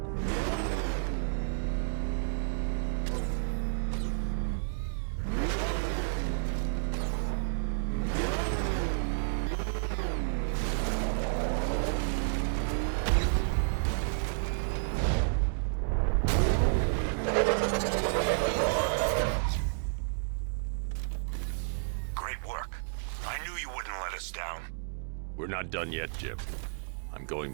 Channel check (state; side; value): silent; left; digital silence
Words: We're not done yet, Jim. I'm going